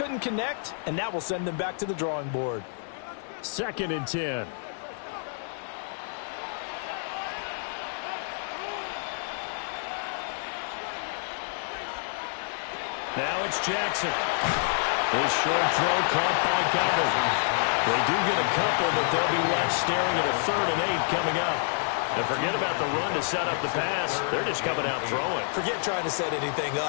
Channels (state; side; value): silent; right; digital silence